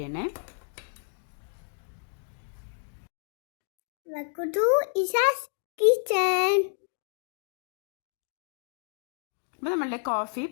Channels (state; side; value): silent; right; digital silence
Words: അപ്പോൾ നമ്മളുടെ കോഫി